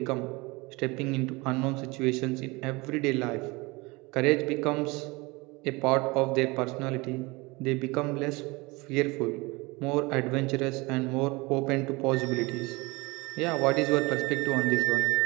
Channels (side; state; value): left; quieter; 24.4 dB